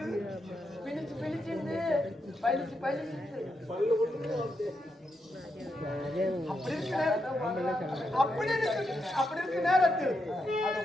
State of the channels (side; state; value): both; normal; correlation 0.83